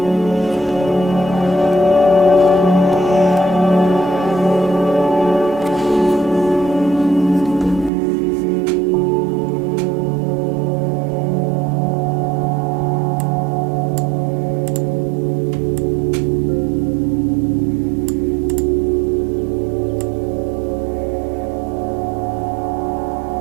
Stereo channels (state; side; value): drops out; left; at 7.9 s